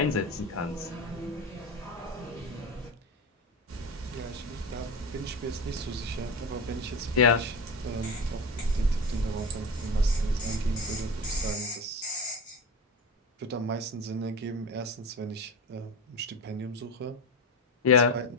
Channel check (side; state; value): both; normal; correlation 0.25